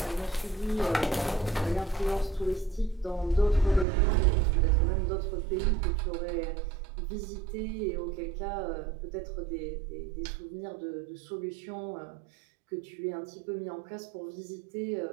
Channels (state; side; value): drops out; left; at 3.9 s